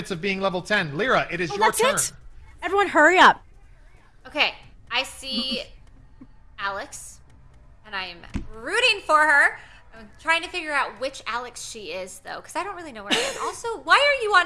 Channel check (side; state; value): both; identical; correlation 1.00